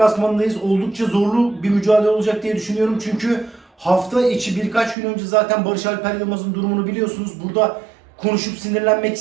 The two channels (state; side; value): drops out; left; at 5.0 s